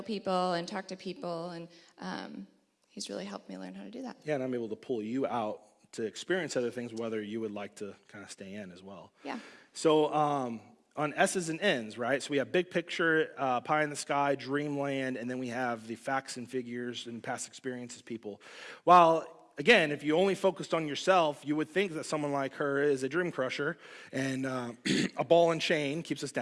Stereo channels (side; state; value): both; identical; correlation 1.00